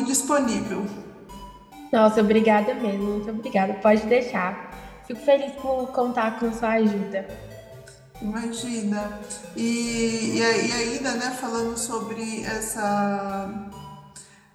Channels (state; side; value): identical; both; correlation 1.00